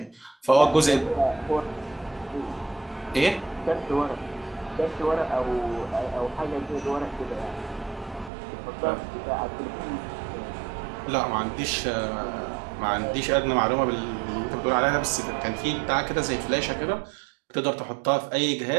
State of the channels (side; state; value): left; drops out; at 8.3 s